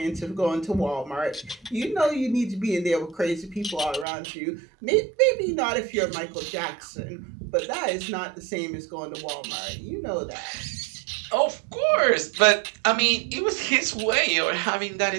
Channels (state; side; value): drops out; left; at 4.0 s